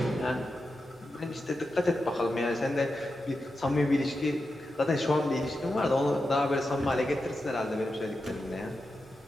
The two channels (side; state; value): both; normal; correlation 0.89